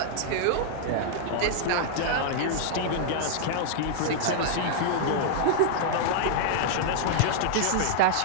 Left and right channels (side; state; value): both; different; correlation -0.01